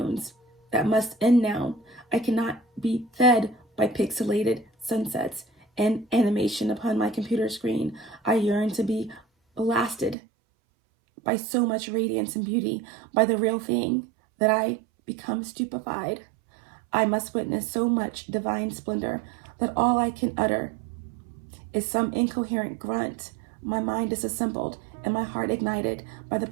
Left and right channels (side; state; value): left; drops out; at 10.2 s